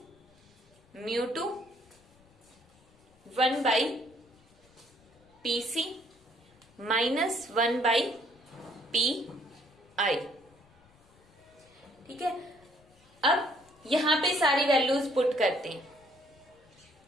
μ2 1 by P C minus 1 by P I. ठीक है, अब यहां पे सारी वैल्यूज पुट करते हैं।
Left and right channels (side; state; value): left; noise; rumble, 30 dB below the sound